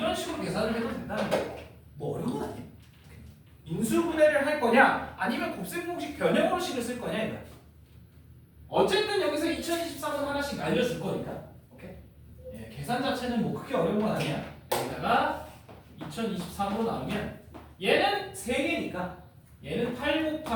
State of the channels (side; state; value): both; identical; correlation 1.00